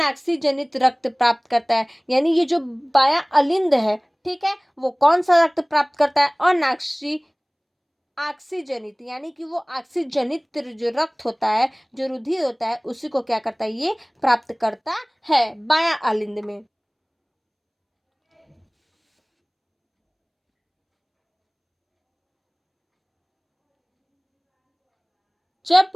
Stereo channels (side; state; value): both; identical; correlation 1.00